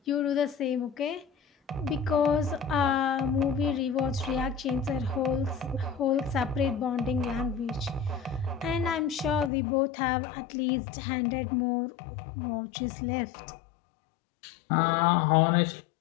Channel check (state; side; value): drops out; right; at 9.5 s